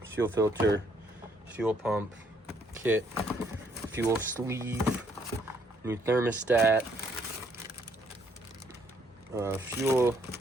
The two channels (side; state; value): both; normal; correlation 0.68